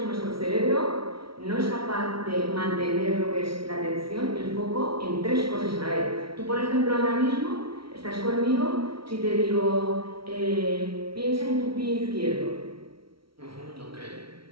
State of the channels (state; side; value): late; left; 0.74 ms